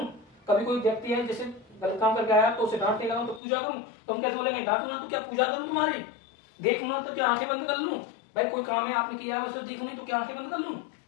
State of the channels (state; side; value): drops out; right; at 3.4 s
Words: कभी कोई व्यक्ति है जैसे गलत काम करके आया तो उसे डांटने लगा तो पूजा करूं, तो हम कैसे बोलेंगे, डांटू ना तो क्या पूजा करूं तुम्हारी, देखूं ना तो क्या आंखें बंद कर लूं। भाई कोई काम है आपने किया है उसे देखूं नहीं तो क्या आंखें बंद कर लूं।